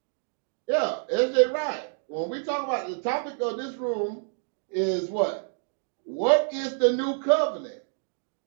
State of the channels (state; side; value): silent; left; digital silence